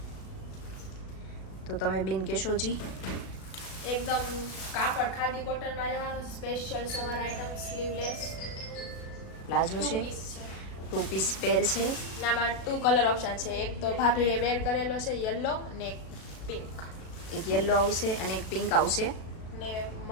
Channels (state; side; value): late; right; 36 ms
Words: તો તમે બેન કહેશો જી. એકદમ કાપડ ખાદી કોટનમાં રહેવાનું. Special summer item, sleeveless palazzo છે, 2 પીસ પેર છે. નામાં 2 કલર ઓપ્શન છે. એક તો ભાભીએ વેર કરેલો છે યલો ને એક પિંક એક યલો આવશે અને એક પિંક આવશે. ને